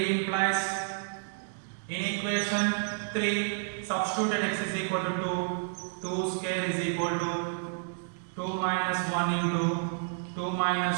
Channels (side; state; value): left; silent; digital silence